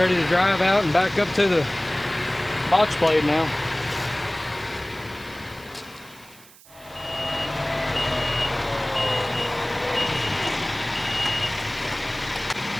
to drive out and back up to the box blade now.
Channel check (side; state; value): right; noise; hiss, 23 dB below the sound